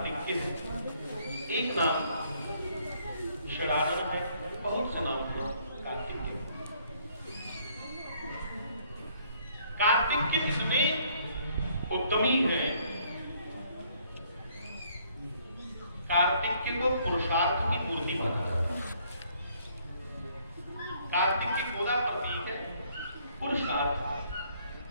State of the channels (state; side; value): inverted; both; correlation -0.65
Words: के है, एक नाम शराधन है, बहुत से नाम है कार्तिक के। कार्तिक के इतने उत्तमी है, कार्तिक को पुरुषार्थ की मूर्ति माना जाता है। कार्तिक की गोदा प्रतीक है पुरुषार्थ।